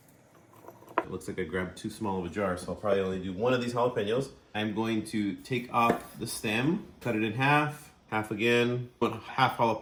It looks like I grabbed too small of a jar, so I'll probably only do one of these jalapenos. I'm going to take off the stem, cut it in half, half again. Half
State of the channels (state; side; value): identical; both; correlation 1.00